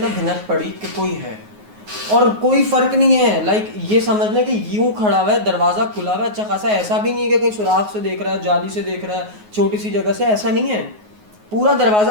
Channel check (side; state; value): left; late; 9.5 ms